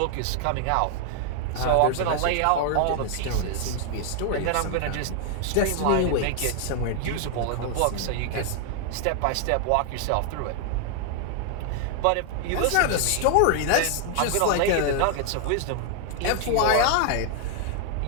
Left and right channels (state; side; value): different; both; correlation 0.00